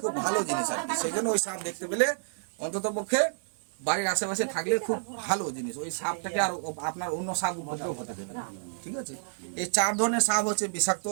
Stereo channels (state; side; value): silent; left; digital silence